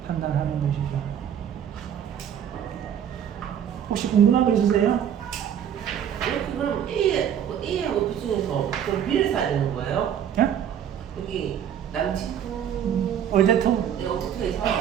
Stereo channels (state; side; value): quieter; left; 9.2 dB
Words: 판단하는 것이죠. 혹시 궁금한 거 있으세요? 이렇게 그럼 A하고 B 중에서 그럼 B를 사야 되는 거예요? 예? 여기 남친구 올데토? 오토에서